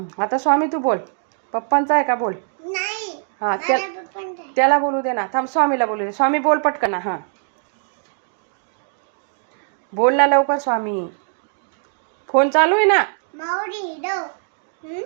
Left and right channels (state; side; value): silent; left; digital silence